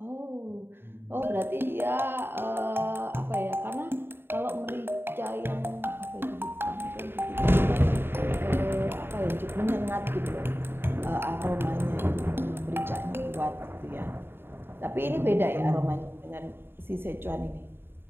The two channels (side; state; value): left; late; 0.11 ms